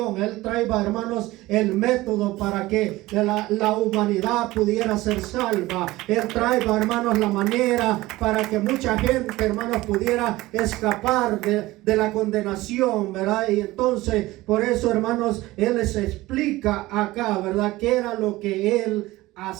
Él trae, hermanos, el método para que la humanidad pudiera ser salva. Él trae, hermanos, la manera para que mucha gente, hermanos, pudiera escapar de la condenación, ¿verdad? Y entonces, por eso, hermanos, Él les explica acá, ¿verdad? ¿Qué era lo que Él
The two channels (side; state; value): left; quieter; 18.6 dB